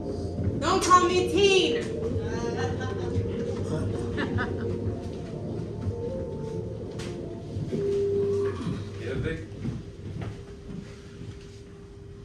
Don't call me teen. Yeah, Vic?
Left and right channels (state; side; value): identical; both; correlation 1.00